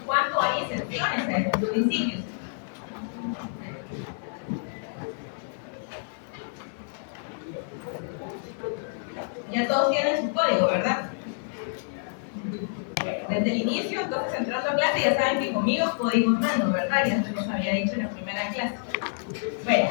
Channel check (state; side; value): silent; right; digital silence